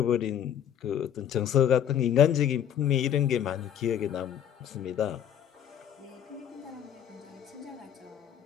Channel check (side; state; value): right; quieter; 9.7 dB